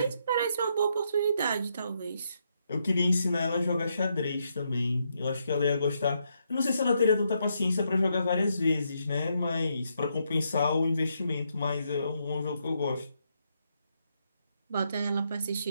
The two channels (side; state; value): both; inverted; correlation -0.78